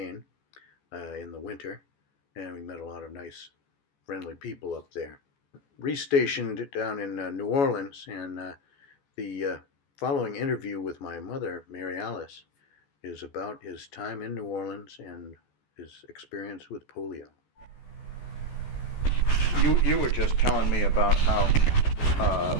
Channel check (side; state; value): right; late; 14 ms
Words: in the winter, and we met a lot of nice, friendly people up there. Restationed down in New Orleans, and the following interview with my mother, Mary Alice, is about his time in New Orleans and his experience with polio. You were just telling me about how